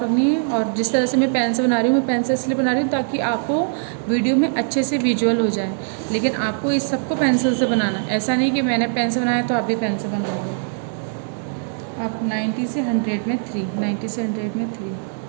रखनी है, और जिस तरह से मैं पेन से बना रही हूँ, मैं पेन से इसलिए बना रही हूँ ताकि आपको वीडियो में अच्छे से विजुअल हो जाए। लेकिन आपको इस सबको पेंसिल से बनाना है, ऐसा नहीं कि मैंने पेन से बनाया तो आप भी पेन से बनाओगे। आप 90 से 100 में 3, 90 से 100 में 3,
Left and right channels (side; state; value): left; silent; 65 dB below the other